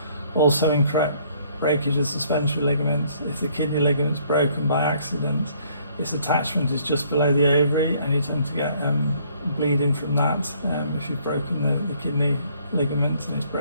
Also incorrect breakage of suspensory ligaments. If the kidney ligament's broken by accident, its attachment is just below the ovary and you tend to get bleeding from that if you've broken the kidney ligament and it's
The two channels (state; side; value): inverted; both; correlation -0.63